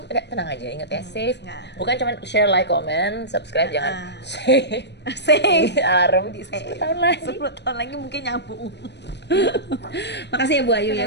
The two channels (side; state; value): right; late; 0.50 ms